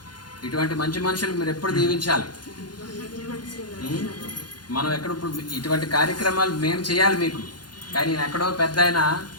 ఇటువంటి మంచి మనుషులు మీరు ఎప్పుడు దీవించాలి. మనం ఎక్కడప్పుడు ఇటువంటి కార్యక్రమాలు మేము చేయాలి మీకు. కానీ ఎక్కడో పెద్ద ఆయన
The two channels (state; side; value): late; right; 0.71 ms